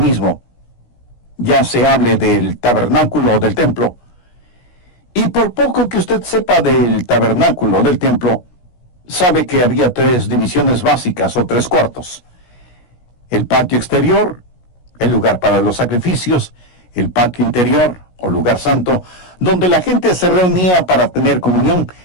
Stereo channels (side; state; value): right; late; 16 ms